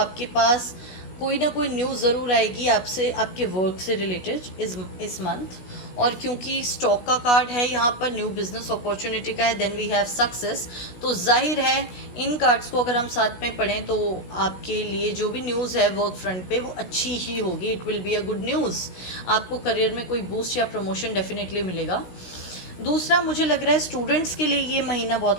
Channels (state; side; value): late; right; 16 ms